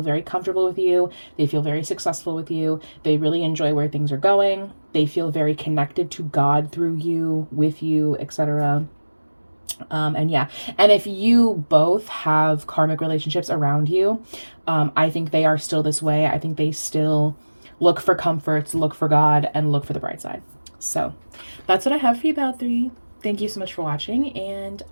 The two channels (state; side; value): inverted; both; correlation -1.00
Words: very comfortable with you. They feel very successful with you. They really enjoy where things are going. They feel very connected to God through you, with you, etc. And yeah, and if you both have karmic relationships around you, I think they are still this way. I think they still look for comforts, look for God, and look for the bright side. So that's what I have for you, Bow 3. Thank you so much for watching, and